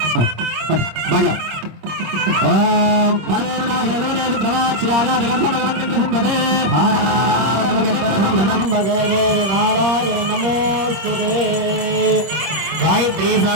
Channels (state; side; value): late; left; 26 ms